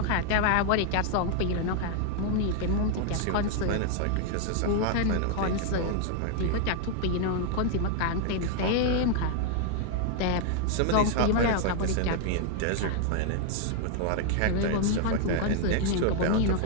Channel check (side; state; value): both; different; correlation 0.00